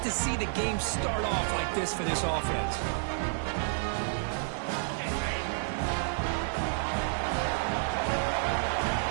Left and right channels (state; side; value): silent; left; digital silence